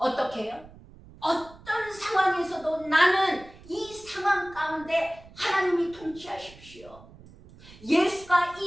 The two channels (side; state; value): right; noise; rumble, 21 dB below the sound